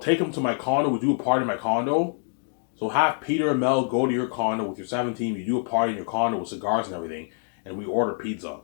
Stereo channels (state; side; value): silent; right; 61 dB below the other